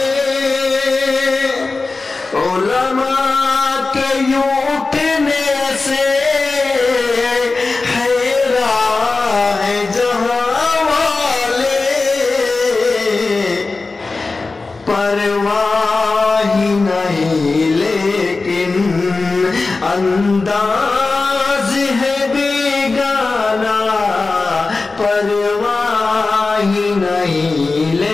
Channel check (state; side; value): quieter; right; 3.7 dB